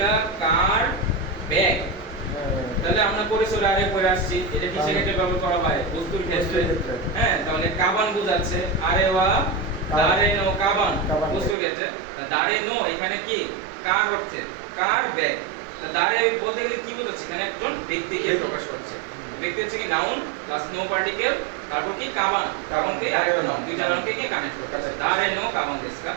কার ব্যাগ তাহলে আমরা পরিসরে আরে পড়ে আসছি এটা কিসের ক্ষেত্রে ব্যবহার করা হয় বস্তুর ক্ষেত্রে হ্যাঁ তাহলে কাবান বোঝাচ্ছে আরে ওয়া দারেনো কাবান বস্তুর ক্ষেত্রে দারেনো এখানে কি কার অর্থে কার ব্যাগ দারে বলতে গেলে কি বোঝাচ্ছে এখানে একজন ব্যক্তিকে প্রকাশ করছে ব্যক্তি হচ্ছে কি নাউন প্লাস নো পার্টিকেল তারপর কি কাবান কাবানকে আরেকটা নাউন দুইটা নাউনকে কি কানেক্ট করছে দারেনো কাবান দেশকা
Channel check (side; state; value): left; drops out; at 11.6 s